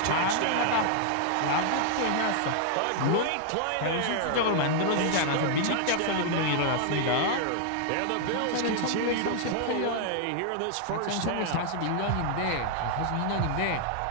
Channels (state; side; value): different; both; correlation -0.01